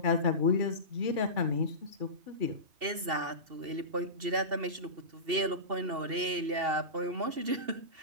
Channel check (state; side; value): late; left; 2.7 ms